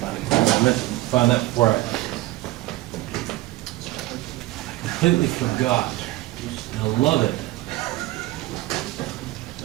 it. I meant to find that before I completely forgot. I love it.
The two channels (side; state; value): left; quieter; 17.9 dB